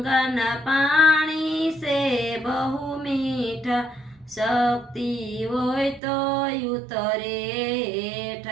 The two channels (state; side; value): drops out; left; at 6.0 s